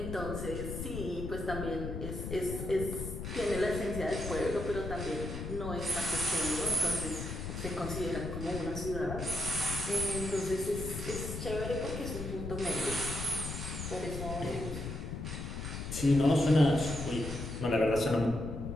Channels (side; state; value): left; noise; rumble, 6 dB below the sound